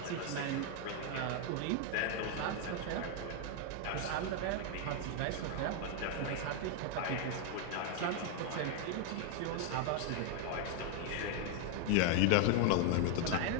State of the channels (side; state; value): both; different; correlation 0.00